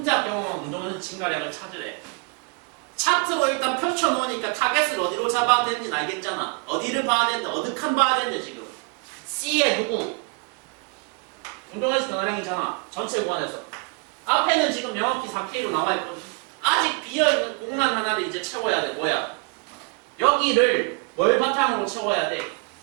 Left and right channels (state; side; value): quieter; left; 33.7 dB